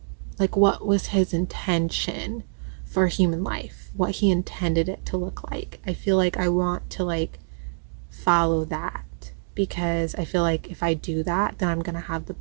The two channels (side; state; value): left; silent; digital silence